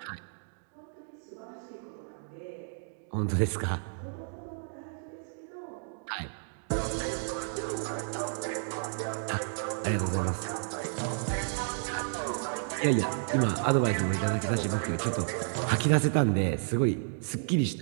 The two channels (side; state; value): left; silent; digital silence